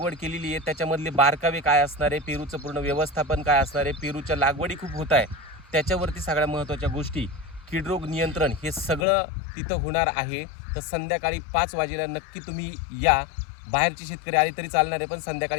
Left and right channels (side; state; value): right; drops out; at 9.1 s